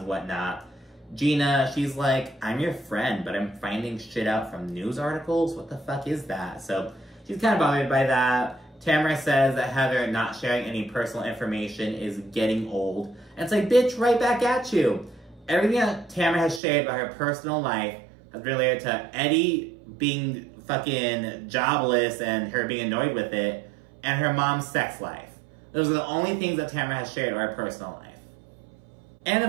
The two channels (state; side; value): drops out; left; at 16.6 s